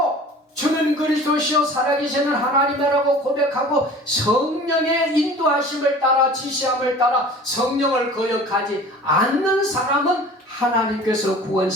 주는 그리스도시요 살아계시는 하나님이라고 고백하고 성령의 인도하심을 따라 지시함을 따라 성령을 거역하지 않는 사람은 하나님께서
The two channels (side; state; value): both; normal; correlation 0.43